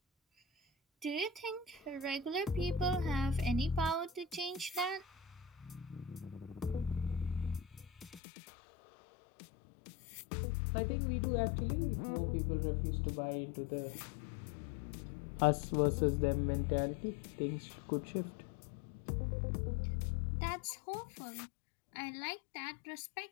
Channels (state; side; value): drops out; right; at 8.2 s